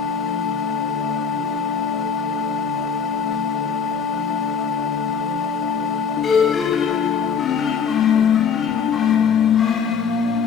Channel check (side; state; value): right; quieter; 6.7 dB